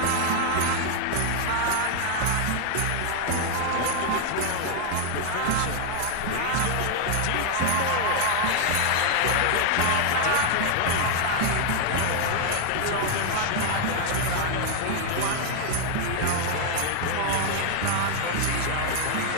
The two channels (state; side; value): different; both; correlation 0.00